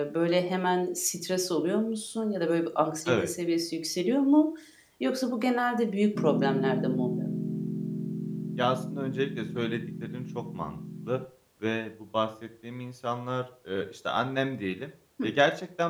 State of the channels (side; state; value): both; identical; correlation 1.00